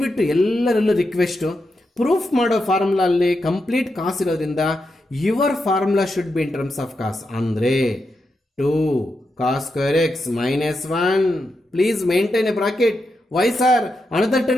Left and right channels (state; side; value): normal; both; correlation 0.86